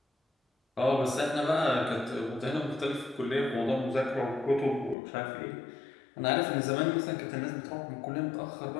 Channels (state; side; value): drops out; right; at 5.0 s